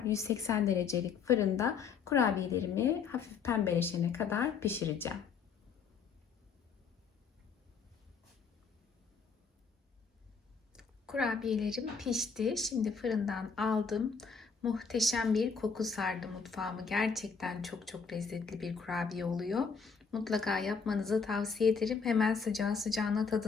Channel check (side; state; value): right; quieter; 5.7 dB